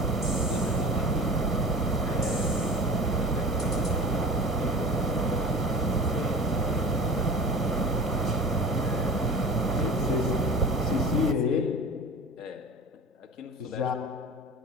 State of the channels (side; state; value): both; normal; correlation 0.37